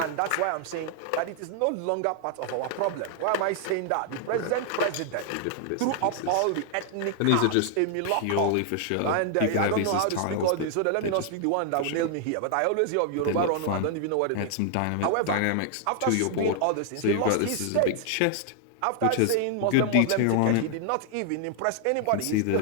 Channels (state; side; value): different; both; correlation 0.00